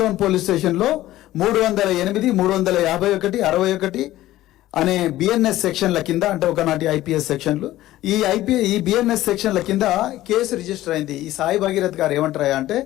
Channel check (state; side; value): quieter; right; 15.3 dB